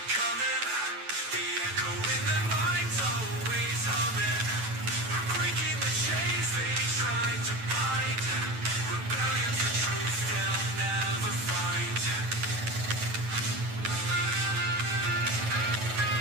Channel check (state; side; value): late; left; 9.1 ms